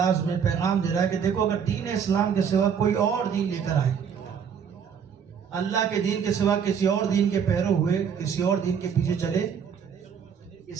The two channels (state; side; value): quieter; left; 7.3 dB